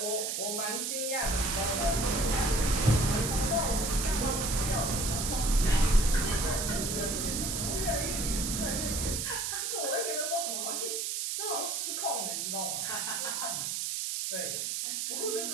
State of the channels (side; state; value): right; noise; hiss, 1 dB below the sound